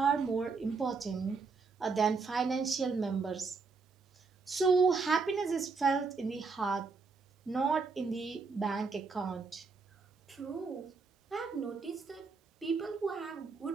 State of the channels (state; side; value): quieter; left; 4.6 dB